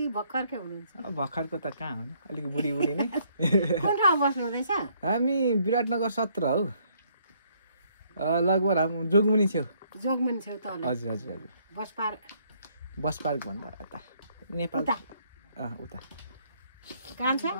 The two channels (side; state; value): both; inverted; correlation -0.68